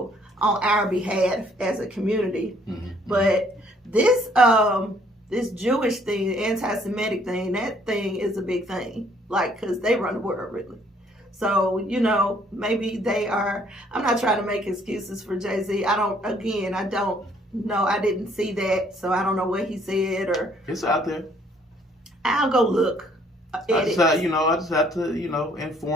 on our behalf as a community. Mm-hmm. But this Jewish thing, the anti-Semitic thing, that thing is a big thing, like, because they run the world, really. So, maybe they are, I'm not trying to make excuses for Jay-Z. I don't know. I didn't see that, so I don't know what he said or. It's out there. I'll go look. I just have to,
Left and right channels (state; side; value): normal; both; correlation 0.63